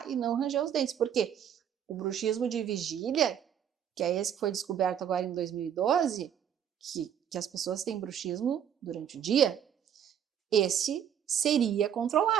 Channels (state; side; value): quieter; left; 9.1 dB